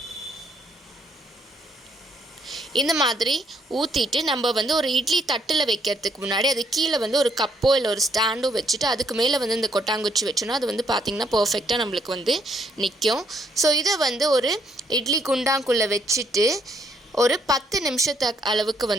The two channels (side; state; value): both; normal; correlation 0.70